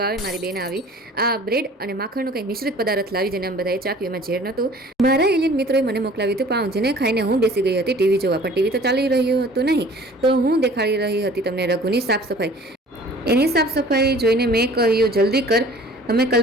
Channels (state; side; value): normal; both; correlation 0.49